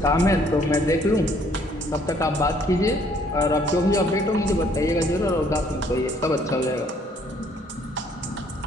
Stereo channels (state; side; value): normal; both; correlation 0.63